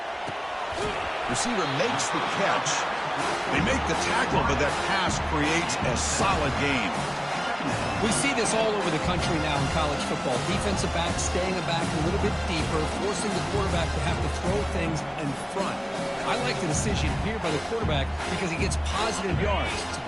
Receiver makes the catch. They make the tackle, but that pass creates a solid gain. We see this all over the country now in college football. Defensive backs staying back a little bit deeper, forcing the quarterback to have to throw things in front. I like the decision here by the quarterback because he gets positive yards. It's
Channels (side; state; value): both; identical; correlation 1.00